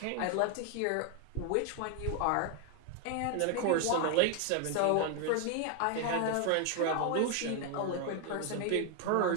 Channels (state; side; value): different; both; correlation 0.01